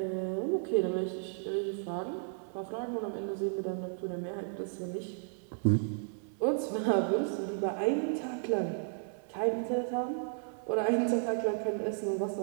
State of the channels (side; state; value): left; silent; 55 dB below the other